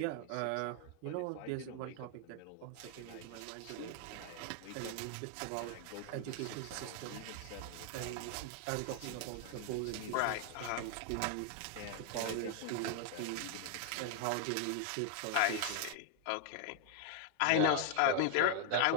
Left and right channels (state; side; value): different; both; correlation 0.00